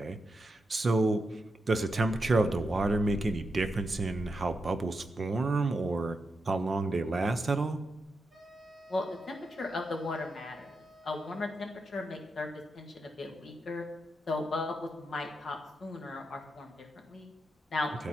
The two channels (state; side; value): normal; both; correlation 0.86